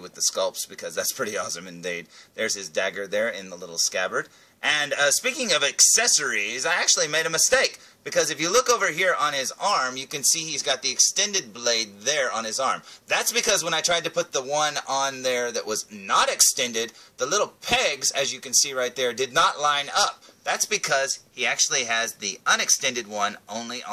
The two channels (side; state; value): both; identical; correlation 1.00